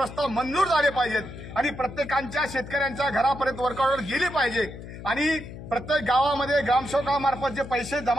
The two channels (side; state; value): left; noise; hum, 12 dB below the sound